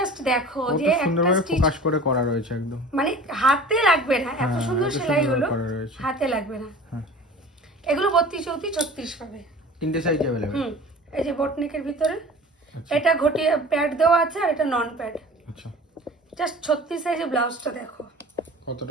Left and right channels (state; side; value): normal; both; correlation 0.42